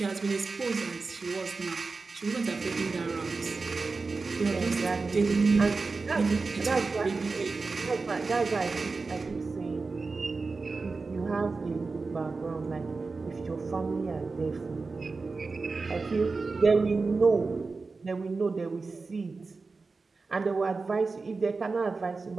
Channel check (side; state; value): left; quieter; 4.1 dB